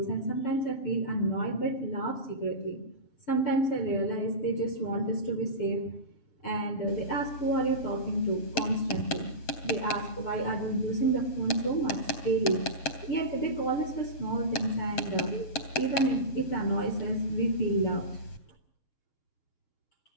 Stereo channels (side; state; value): right; late; 7.8 ms